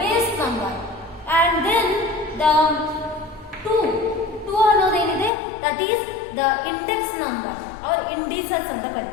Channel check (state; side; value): drops out; right; at 5.3 s